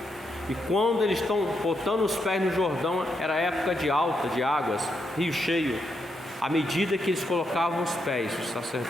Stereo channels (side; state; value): both; normal; correlation 0.81